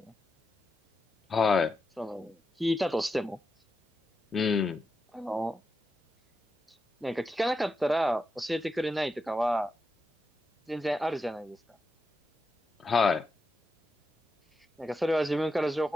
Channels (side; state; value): both; normal; correlation 0.88